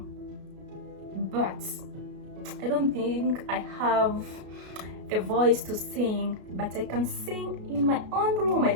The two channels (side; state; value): left; late; 33 ms